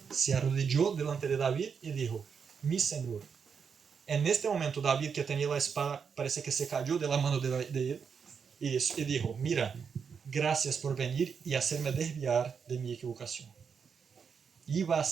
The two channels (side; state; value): left; quieter; 6.4 dB